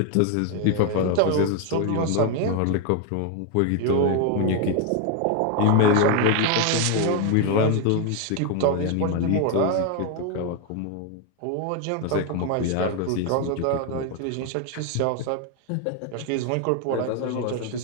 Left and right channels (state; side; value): different; both; correlation 0.01